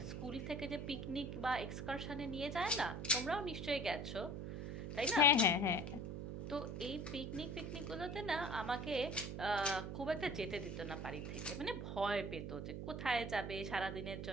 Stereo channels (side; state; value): right; noise; hum, 5 dB below the sound